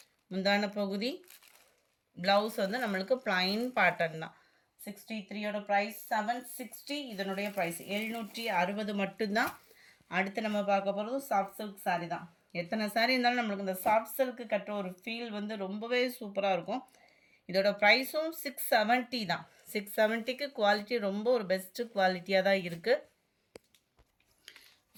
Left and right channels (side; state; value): both; identical; correlation 1.00